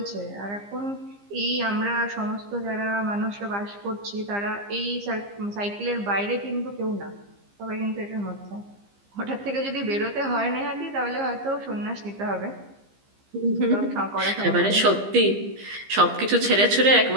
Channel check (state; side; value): late; left; 15 ms